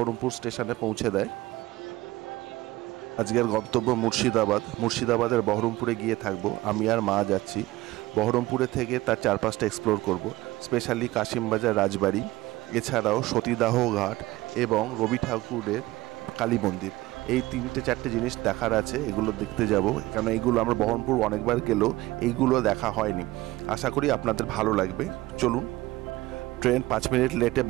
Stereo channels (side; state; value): left; quieter; 18.5 dB